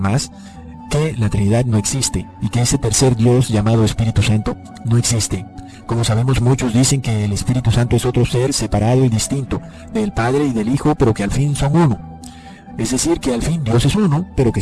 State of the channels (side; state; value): both; identical; correlation 1.00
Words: que la Trinidad no existe y que ese tercer Dios llamado Espíritu Santo no existe. Como sabemos, muchos dicen que el Espíritu Santo es otro ser separado y distinto del Padre y del Hijo, pero que al fin son uno. Es decir, que al fin Dios es uno, pero que